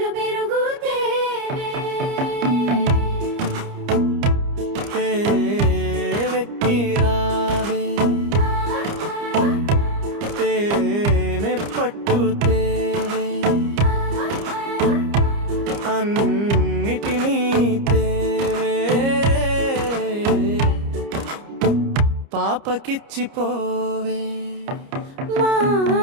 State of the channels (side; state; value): left; late; 30 ms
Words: పెరుగు తేవే తేవెక్కి రావే తేనె పట్టు తేవే అన్నిటినీ తేవే పాపకిచ్చి పోవే మా